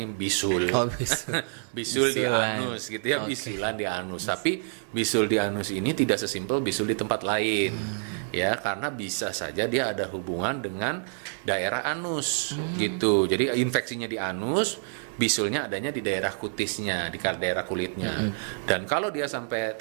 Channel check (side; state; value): left; silent; 60 dB below the other